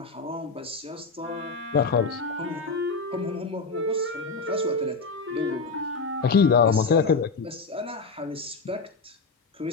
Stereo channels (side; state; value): right; quieter; 4.3 dB